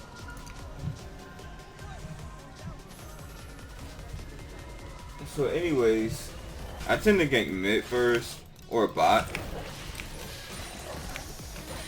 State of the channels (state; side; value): identical; both; correlation 1.00